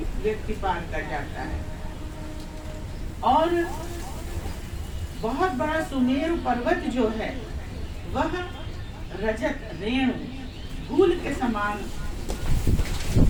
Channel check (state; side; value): identical; both; correlation 1.00